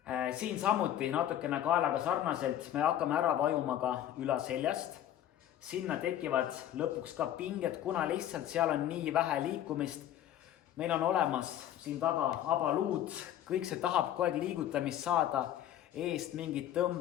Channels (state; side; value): quieter; right; 11.5 dB